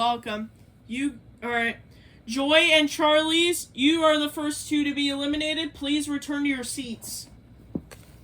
Alright. Joy and Charlie's, you are the first two to be eliminated. Please return to your seats.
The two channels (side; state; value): both; identical; correlation 1.00